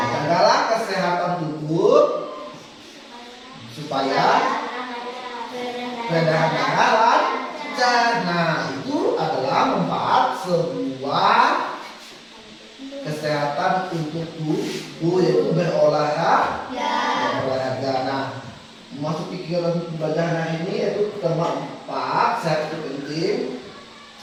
Jagalah kesehatan tubuh supaya peredaran darah lancar. Nah, itu adalah manfaat sebuah kesehatan untuk tubuh yaitu berolahraga. Nah, masuk kegiatan pembelajaran hari ini yaitu tema 4, sehat itu penting.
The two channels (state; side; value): identical; both; correlation 1.00